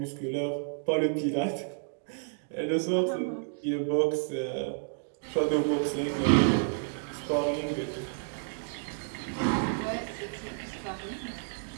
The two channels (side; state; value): left; silent; digital silence